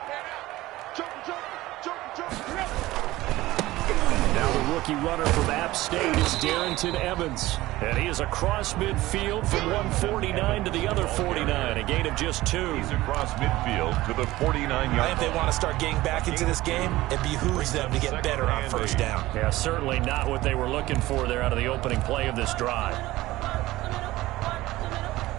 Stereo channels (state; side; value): quieter; left; 17.6 dB